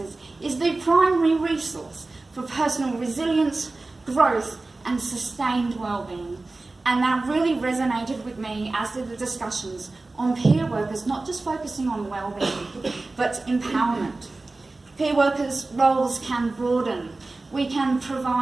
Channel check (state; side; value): quieter; left; 3.3 dB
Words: is the primary resource for personal resilience, growth, and sustained well-being. And that really resonated with me, as did the discussions on peer workers, not just focusing on well-being, but empowerment. Peer workers' roles can broaden. We can